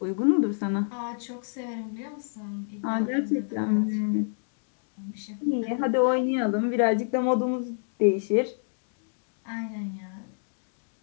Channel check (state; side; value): silent; right; digital silence